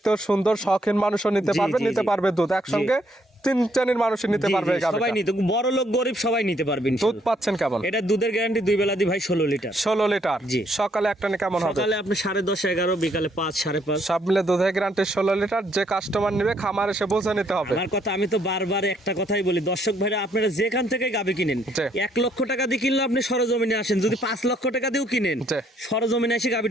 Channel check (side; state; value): both; normal; correlation 0.69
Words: সুন্দর, শখিন মানুষও নিতে জি, পারবে, জি, নিতে জি। পারবে দুধ একসঙ্গে তিন শ্রেণীর মানুষ নিতে জি, পারবে জি, এই গাভীটা? সবাই নিতে, বড় লোক গরিব সবাই নিতে পারবে দুধ ইনশাআল্লাহ। পাচ্ছেন কেমন? এটা দুধের গ্যারান্টি 2 বেলা দি ভাই 16 লিটার। 16 লিটার। জি। সকালে একটা কেমন হবে? সকালে আপনি 10:30 11, বিকালে 5 5:30। সব মিলে দুধের গ্যারান্টি 16 লিটার। যে কাস্টমার নেবে খামার এসে বুঝে নিতে হবে। আমার কথা, আমি তো বারবার একটা কথাই বলি দর্শক ভাইরা, আপনারা যেখান থেকে গাভী কিনেন, জি। 1 লক্ষ টাকা দিয়ে কিনলে আপনি সরজমিনে আসেন, যদি 5 লক্ষ টাকা দিয়েও কিনেন জি। সরজমিনে এসে